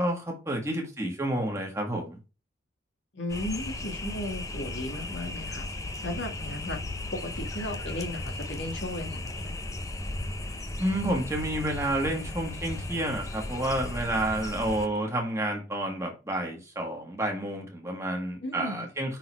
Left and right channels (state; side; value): normal; both; correlation 0.53